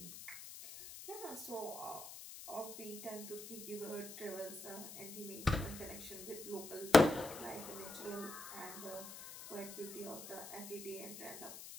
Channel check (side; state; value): left; noise; hiss, 11 dB below the sound